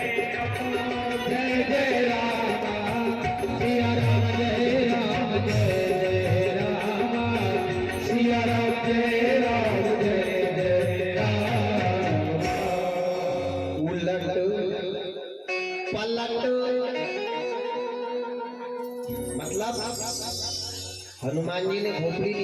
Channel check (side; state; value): both; identical; correlation 1.00